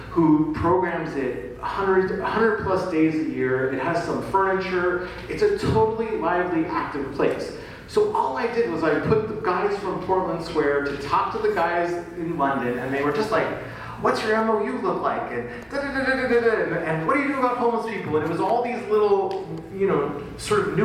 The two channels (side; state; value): both; identical; correlation 1.00